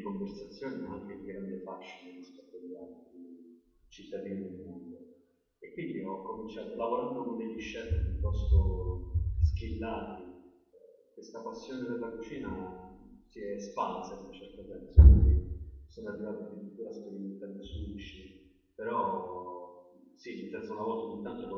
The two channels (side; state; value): both; identical; correlation 1.00